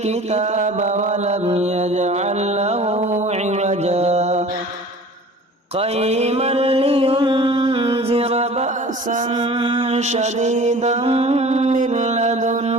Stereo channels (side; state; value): both; normal; correlation 0.44